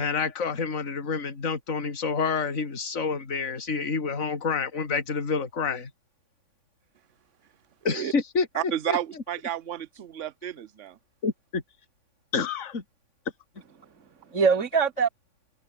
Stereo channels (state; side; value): late; right; 3.5 ms